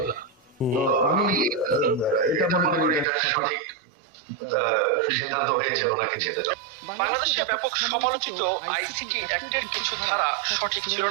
না। আমি এটা মনে করি এটা সঠিক সিদ্ধান্ত হয়েছে ওনাকে যেতে। বাংলাদেশে ব্যাপক সমালোচিত আইসিটি অ্যাক্টের কিছু ধারা সঠিক ছিল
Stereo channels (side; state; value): left; drops out; at 3.1 s